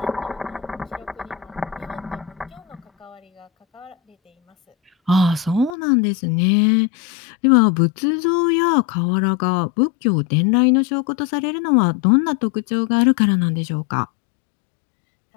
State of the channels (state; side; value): drops out; right; at 5.8 s